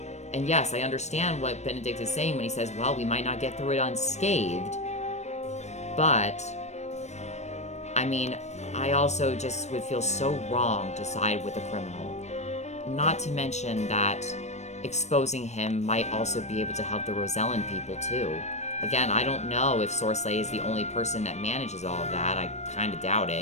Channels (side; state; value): right; late; 0.33 ms